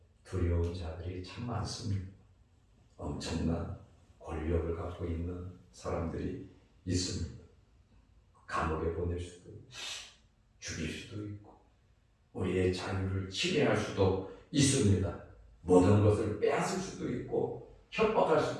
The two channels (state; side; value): identical; both; correlation 1.00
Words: 두려운 자들이 참 많습니다. 엄청난 권력을 갖고 있는 사람들이 있습니다. 감옥에 보낼 수도 있고 죽일 수도 있고 우리의 자유를 침해할 수도 있습니다. 모든 것을 빼앗을 수도 있고 협박할